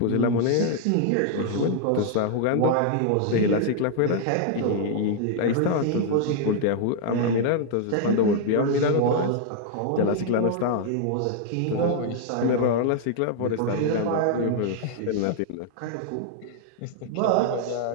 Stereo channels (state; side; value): different; both; correlation 0.00